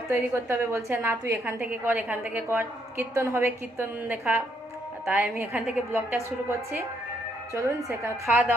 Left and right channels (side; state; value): both; normal; correlation 0.73